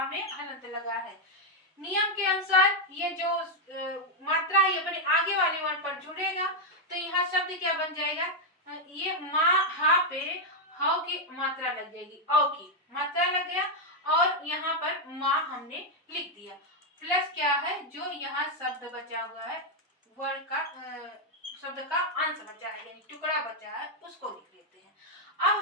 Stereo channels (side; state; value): both; normal; correlation 0.00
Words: में हलंत लगा है। नियम के अनुसार ये जो मात्रा है अपने आगे वाले वर्ण पर जुड़ेगा, तो यहाँ शब्द क्या बन जाएगा, ये माँ हा पे हाउ की मात्रा लग जाएगी, औ की मात्रा लग गया और यहाँ पर माँ हमने लिख दिया। प्लस क्या है, जो यहाँ शब्द बचा हुआ है वर्ण का शब्द का अंश बचा है यानी टुकड़ा बचा है उसको लिख लेते हैं।